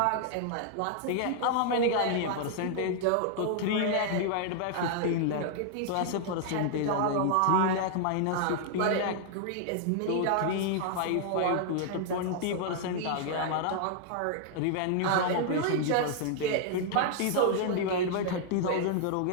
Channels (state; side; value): different; both; correlation -0.01